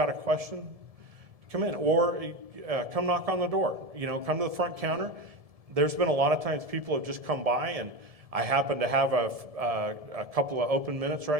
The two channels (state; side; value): late; left; 1.7 ms